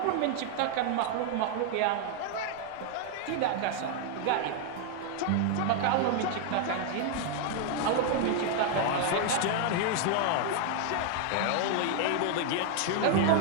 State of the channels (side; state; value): both; different; correlation 0.00